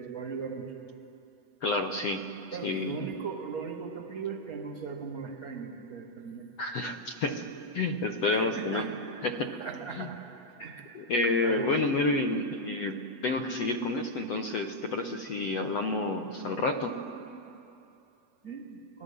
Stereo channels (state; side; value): late; right; 8.2 ms